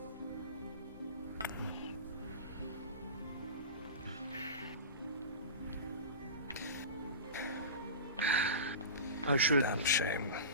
I should. Damn shame.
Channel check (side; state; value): both; inverted; correlation -0.30